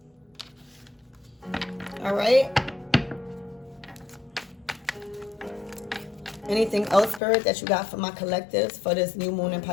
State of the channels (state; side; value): drops out; right; at 7.2 s